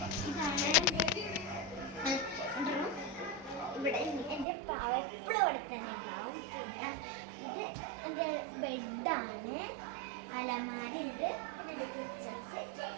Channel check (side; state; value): left; drops out; at 4.5 s